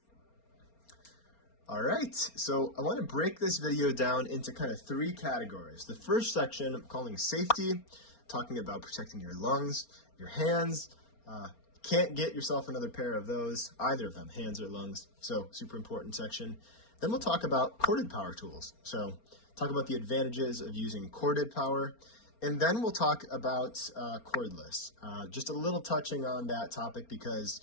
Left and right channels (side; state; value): right; late; 4.3 ms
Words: All right, so I want to break this video down into kind of three categories. The first section I'm calling safety, talking about protecting your lungs, your hands. Can't get yourself another pair of those, either of them, hands or lungs. So super important section. Then we'll talk about corded power tools. So talk about the advantages of using corded power. And then we'll talk about cordless. Just a little touching on that topic because,